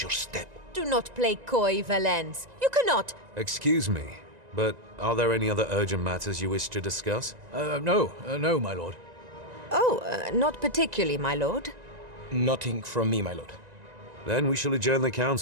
step. Do not play coy, Valence. You cannot. Excuse me, but are there any other urgent matters you wish to discuss? No, my lord. Oh, not particularly, my lord. Nothing from me, my lord. Then we shall adjourn the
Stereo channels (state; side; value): late; left; 1.9 ms